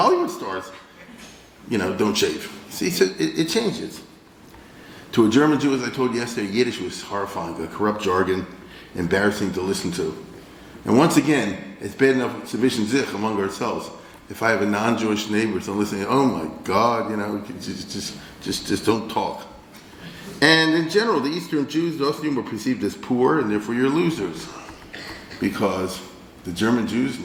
stars, you know, don't shave. See, so it changes. To a German Jew, as I told you yesterday, Yiddish was horrifying, a corrupt jargon, embarrassing to listen to. And once again, it's bad enough sufficient zich among ourselves. If I have a non-Jewish neighbor, so I'm listening, oh my God, you know, just don't talk. And in general, the Eastern Jews, the Ostjuden, were perceived as poor, and therefore you're losers. Because the German Jews,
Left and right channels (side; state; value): both; identical; correlation 1.00